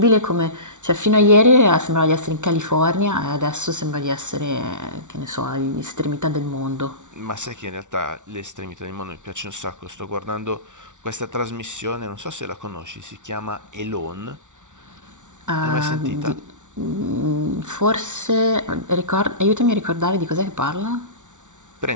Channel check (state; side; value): late; left; 0.86 ms